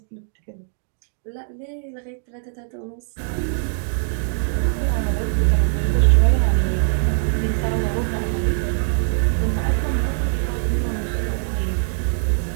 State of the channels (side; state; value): left; silent; digital silence